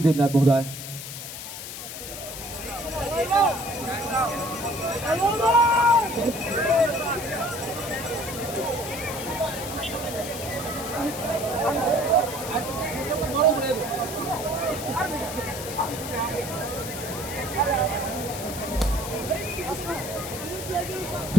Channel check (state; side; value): noise; left; hiss, 9 dB below the sound